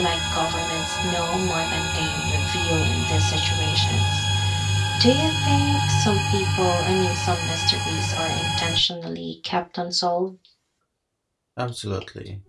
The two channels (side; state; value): both; identical; correlation 1.00